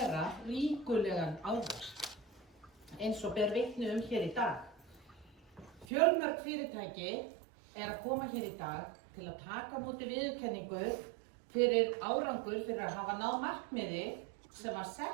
ríkulegan ávöxt, eins og ber vitni hér í dag. Fjölmörg fyrirtæki að koma hér í dag til að taka á móti viðurkenningu fyrir árangur fyrir að hafa náð markmiði sem var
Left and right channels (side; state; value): left; drops out; at 5.9 s